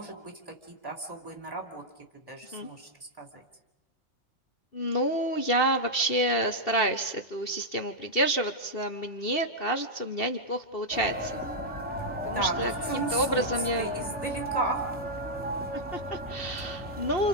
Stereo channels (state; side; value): late; right; 2.7 ms